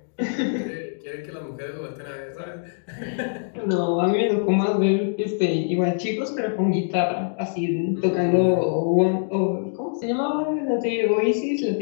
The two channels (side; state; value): right; silent; digital silence